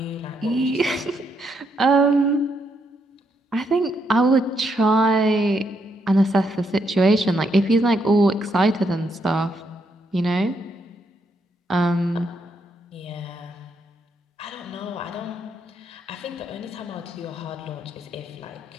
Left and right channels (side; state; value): both; normal; correlation 0.77